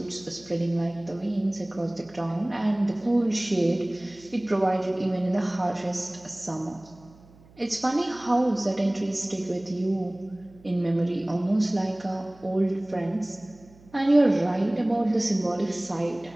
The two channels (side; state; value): right; noise; hum, 25 dB below the sound